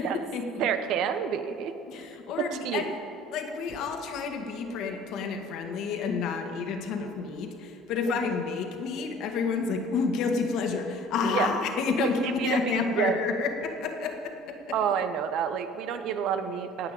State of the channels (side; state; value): both; normal; correlation 0.48